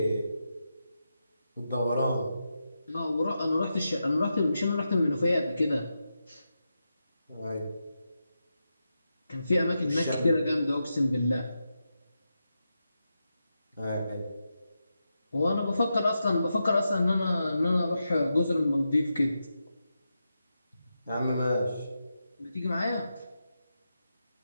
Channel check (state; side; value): inverted; both; correlation -0.88